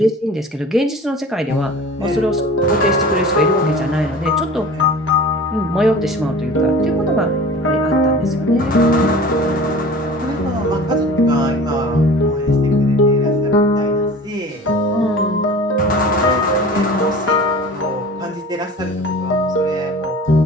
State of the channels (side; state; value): both; normal; correlation 0.41